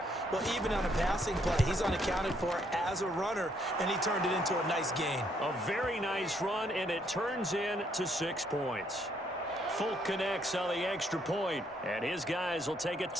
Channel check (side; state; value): both; normal; correlation 0.70